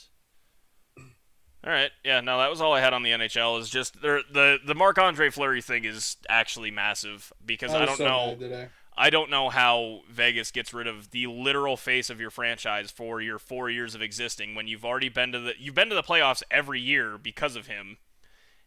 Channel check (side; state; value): both; identical; correlation 1.00